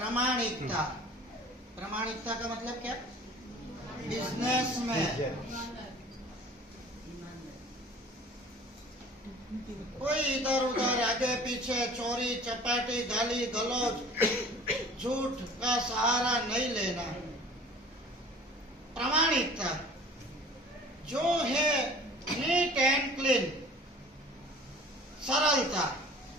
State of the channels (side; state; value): both; normal; correlation 0.46